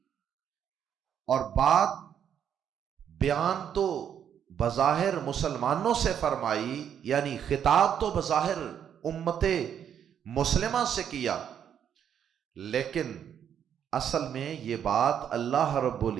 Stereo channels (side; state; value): left; quieter; 8.9 dB